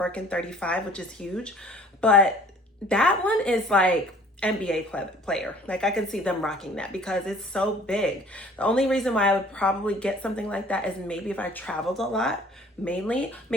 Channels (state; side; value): normal; both; correlation 0.52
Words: 35, which is huge, but that one is like NBA player. Like I can see them rocking that because it's so big. The only reason why I would probably get something like that is maybe if I traveled a lot, mainly,